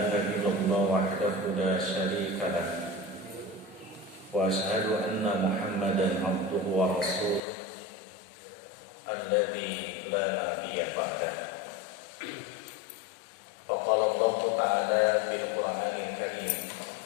إلا الله وحده لا شريك له وأشهد أن محمدا عبده ورسوله الذي لا نبي بعده فقال الله تعالى في القرآن الكريم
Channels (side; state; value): right; drops out; at 7.4 s